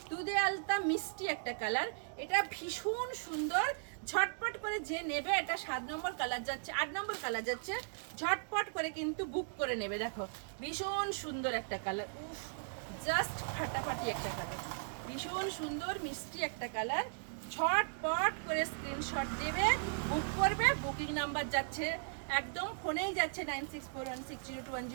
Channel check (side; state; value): left; silent; digital silence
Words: দুধে আলতা মিষ্টি একটা কালার, এটা ভীষণ সুন্দর। ঝটপট করে যে নেবে, এটা 7 নম্বর কালার যাচ্ছে, 8 নম্বর কালার যাচ্ছে, ঝটপট করে কিন্তু বুক করে নেবে। দেখো ভীষণ সুন্দর একটা কালার, উফ জাস্ট ফাটাফাটি একটা কালার, ভীষণ সুন্দর মিষ্টি একটা কালার। ঝটপট করে স্ক্রিনশট দেবে, বুক করবে। বুকিং নাম্বার যাচ্ছে একদম ফোনেই যাচ্ছে